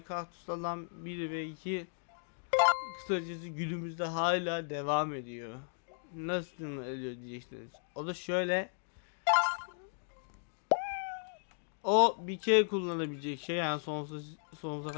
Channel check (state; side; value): silent; right; digital silence